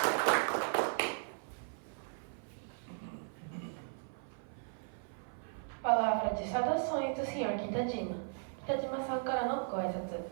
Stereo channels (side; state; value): left; silent; 53 dB below the other